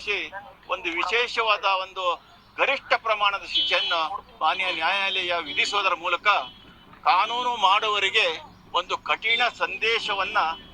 ಒಂದು ವಿಶೇಷವಾದ ಒಂದು ಗರಿಷ್ಠ ಪ್ರಮಾಣದ ಶಿಕ್ಷೆಯನ್ನು ಮಾನ್ಯ ನ್ಯಾಯಾಲಯ ವಿಧಿಸುವುದರ ಮೂಲಕ ಕಾನೂನು ಮಾಡುವವರಿಗೆ ಒಂದು ಕಠಿಣ ಸಂದೇಶವನ್ನ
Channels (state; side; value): identical; both; correlation 1.00